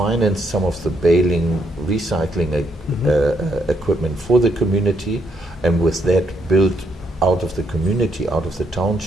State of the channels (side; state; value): both; normal; correlation 0.75